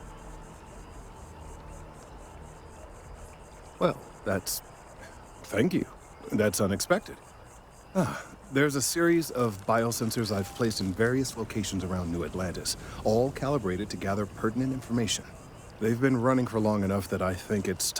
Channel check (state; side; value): identical; both; correlation 1.00